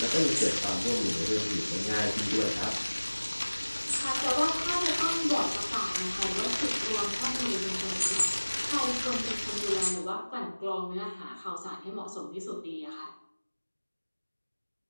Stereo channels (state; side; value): inverted; both; correlation -1.00